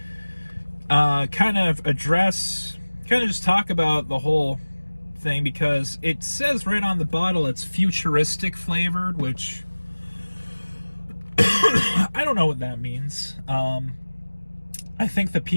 kind of just talk about the whole thing, because it says right on the bottle it's futuristic flavored, which I don't know what that means. I think the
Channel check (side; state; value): both; inverted; correlation -1.00